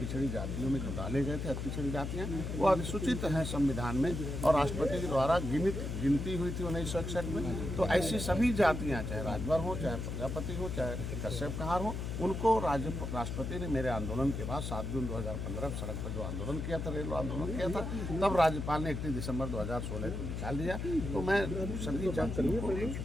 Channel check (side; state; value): left; noise; hum, 4 dB below the sound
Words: जातियों में जो डाले गए थे पिछड़ी जातियाँ, वो अधिसूचित हैं संविधान में और राष्ट्रपति के द्वारा गिनती हुई थी 1961 में। तो ऐसी सभी जातियाँ, चाहे राजभर हो, चाहे प्रजापति हो, चाहे कश्यप कहार हो, उनको राष्ट्रपति ने मेरे आंदोलन के बाद 7 जून 2015 सड़क पर जो आंदोलन किया था, रेल आंदोलन किया था, तब राज्यपाल ने 31 दिसंबर 2016 को निकाल दिया। तो मैं सभी जातियों को